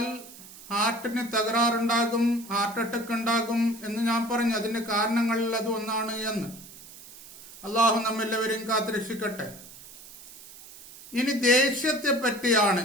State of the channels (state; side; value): noise; right; hiss, 18 dB below the sound